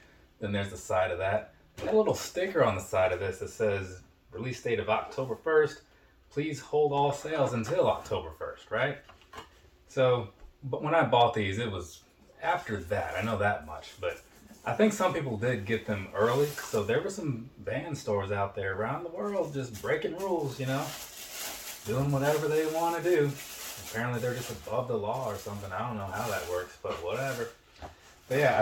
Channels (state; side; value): identical; both; correlation 1.00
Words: Then there's the side of that. Got a little sticker on the side of this that says release date of October 1st. Please hold all sales until October 1st, right? So, but when I bought these, it was after that. I know that much, but I think some people did get them early. So there were some band stores out there around the world just breaking rules, doing whatever they want to do. Apparently they're just above the law or something. I don't know how that works, but whatever. But yeah,